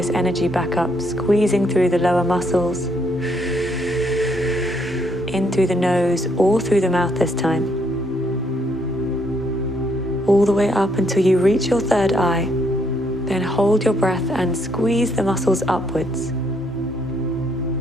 energy back up, squeezing through the lower muscles, in through the nose or through the mouth this time. All the way up until you reach your third eye. Then hold your breath and squeeze the muscles upwards.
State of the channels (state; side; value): normal; both; correlation 0.72